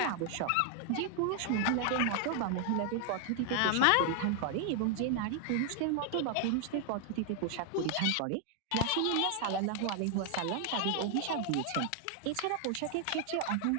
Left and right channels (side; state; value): both; different; correlation 0.00